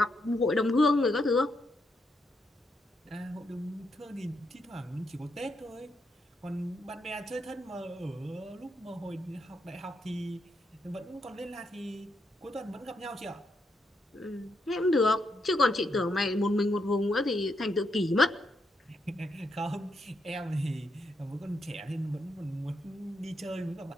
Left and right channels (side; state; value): both; normal; correlation 0.80